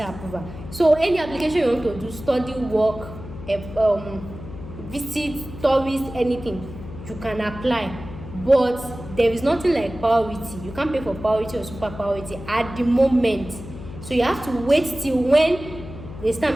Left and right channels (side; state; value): left; noise; hum, 12 dB below the sound